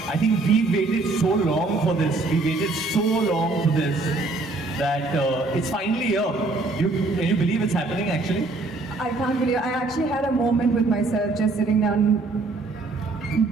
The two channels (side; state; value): left; quieter; 3.4 dB